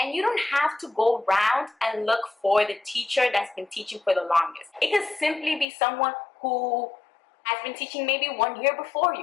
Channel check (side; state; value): right; drops out; at 5.7 s